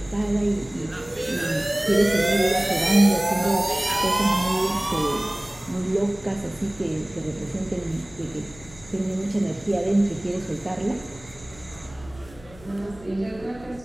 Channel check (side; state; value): left; noise; hum, 21 dB below the sound